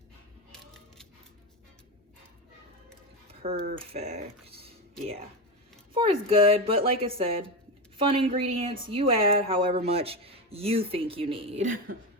Perfect. Yeah, 4 is good, but like I said, fun ingredients, you add however much you think you need.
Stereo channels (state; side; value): normal; both; correlation 0.17